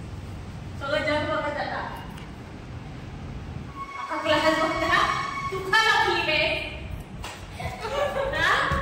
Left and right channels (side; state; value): both; identical; correlation 1.00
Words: सगळं जग बघत जाता. अख्खा क्लास बघता तू का लागली बे.